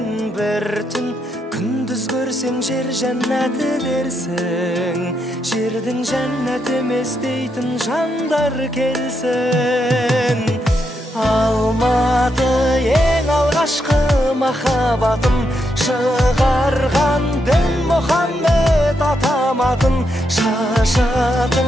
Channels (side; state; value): both; normal; correlation 0.81